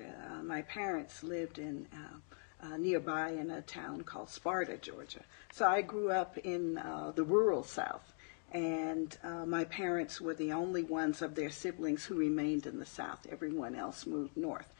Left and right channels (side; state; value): right; silent; 51 dB below the other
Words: My parents lived in nearby in a town called Sparta, Georgia. So I grew up in the rural South, and my parents were the only ones of their siblings who remained in the South. Everyone else moved north.